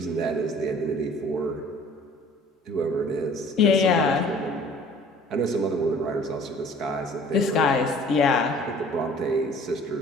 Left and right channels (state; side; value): normal; both; correlation 0.50